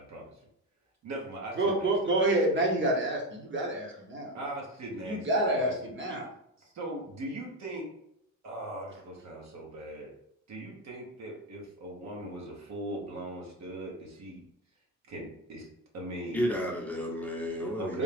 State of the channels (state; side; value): normal; both; correlation 0.14